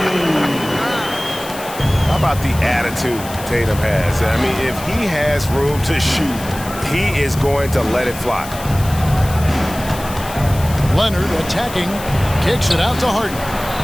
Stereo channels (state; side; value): noise; left; hiss, 14 dB below the sound